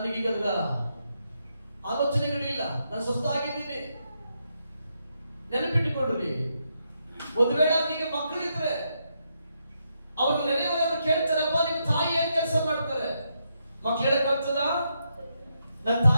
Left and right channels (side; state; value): both; inverted; correlation -0.81